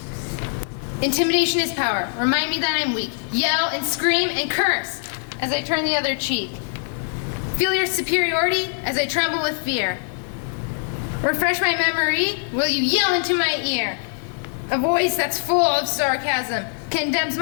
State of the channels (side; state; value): right; silent; 55 dB below the other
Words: Intimidation is power. Remind me that I'm weak. Yell and scream and curse as I turn the other cheek. Feel your superiority as I tremble with fear. Refresh my memory, will you yell into my ear? A voice that's full of sarcasm condemns